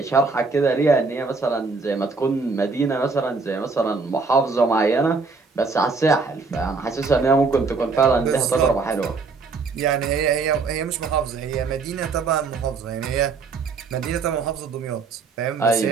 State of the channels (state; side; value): quieter; left; 4.4 dB